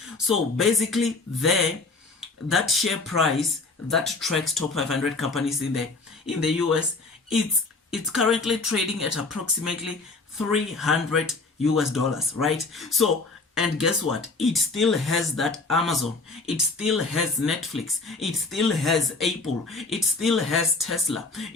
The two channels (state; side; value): quieter; right; 3.7 dB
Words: So basically that share price that tracks top 500 companies in the US, it's currently trading at approximately 300 US dollars, right? So, and guess what? It still has that Amazon, it still has Netflix, it still has Apple, it still has Tesla,